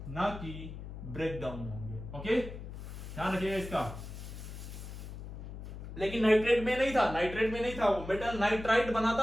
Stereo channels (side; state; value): left; noise; hum, 10 dB below the sound